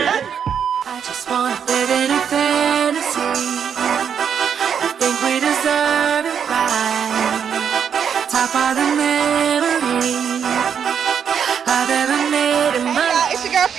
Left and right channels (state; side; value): quieter; left; 7.7 dB